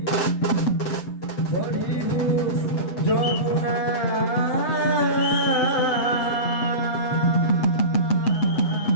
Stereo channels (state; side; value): late; right; 7.9 ms